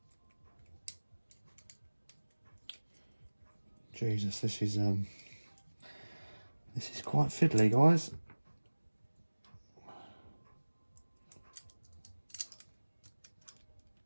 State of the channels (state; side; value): inverted; both; correlation -1.00